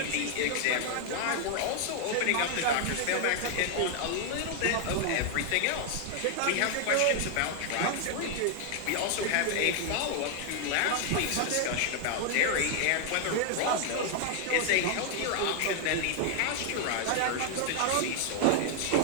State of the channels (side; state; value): both; different; correlation 0.00